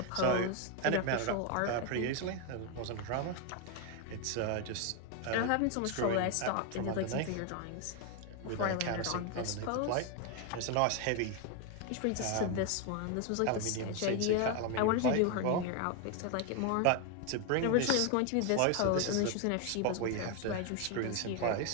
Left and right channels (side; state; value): both; different; correlation 0.01